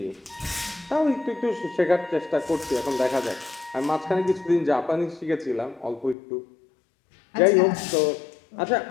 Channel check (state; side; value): drops out; right; at 6.2 s